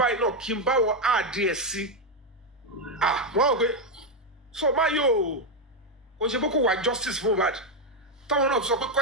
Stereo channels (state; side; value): normal; both; correlation 0.05